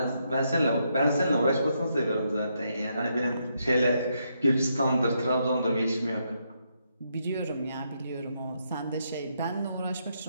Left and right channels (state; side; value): inverted; both; correlation -0.79